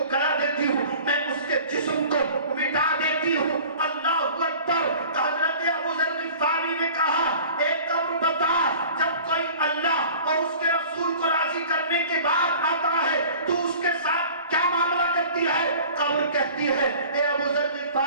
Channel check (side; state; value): both; inverted; correlation -0.44